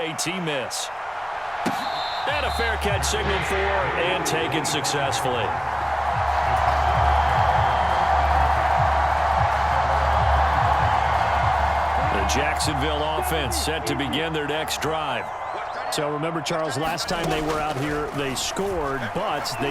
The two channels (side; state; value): both; identical; correlation 1.00